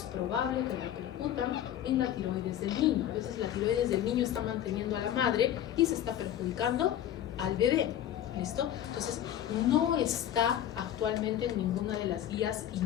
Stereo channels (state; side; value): quieter; right; 11.1 dB